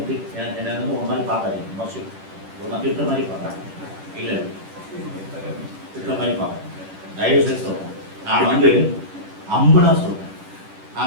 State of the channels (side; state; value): left; late; 10 ms